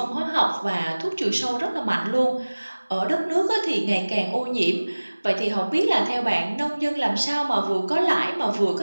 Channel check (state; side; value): inverted; both; correlation -1.00